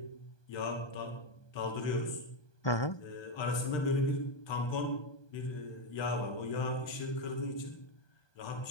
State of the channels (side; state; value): right; late; 1.2 ms